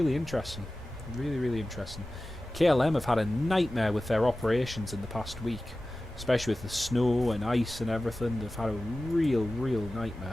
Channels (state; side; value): normal; both; correlation 0.96